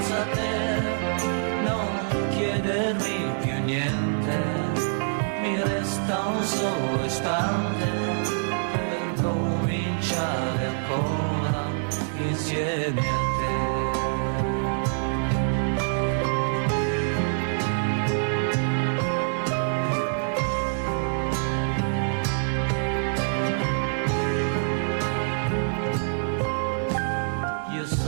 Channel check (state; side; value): silent; left; 61 dB below the other